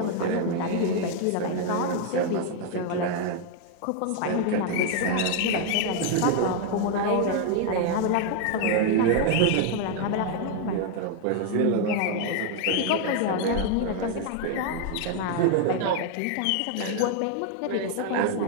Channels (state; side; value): different; both; correlation 0.00